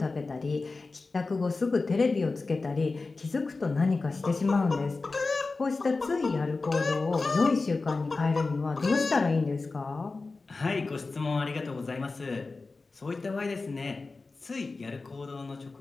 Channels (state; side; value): quieter; right; 3.8 dB